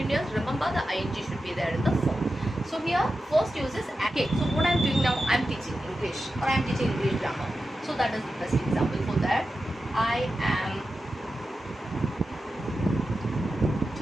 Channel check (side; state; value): both; normal; correlation 0.92